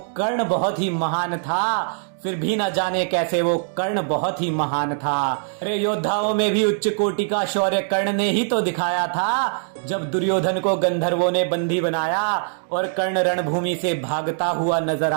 कर्ण बहुत ही महान था, फिर भी न जाने कैसे वो कर्ण बहुत ही महान था। अरे योद्धाओं में भी उच्च कोटि का शौर्य कर्ण ने ही तो दिखाया था, जब दुर्योधन को गंधर्वों ने बंदी बनाया और कर्ण रणभूमि से भागता हुआ नजर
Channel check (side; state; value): left; silent; digital silence